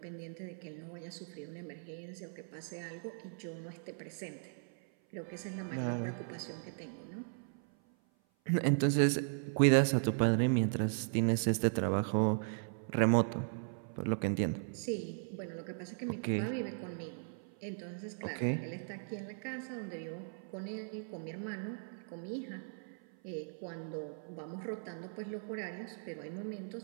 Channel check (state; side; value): silent; left; 53 dB below the other